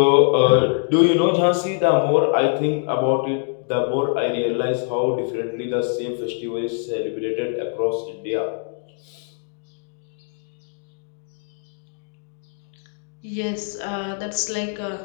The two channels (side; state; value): right; silent; 63 dB below the other